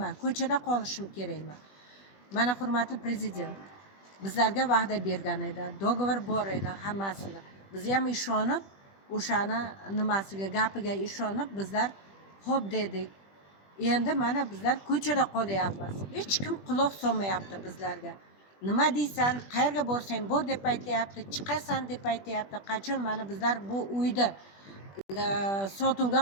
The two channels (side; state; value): right; late; 20 ms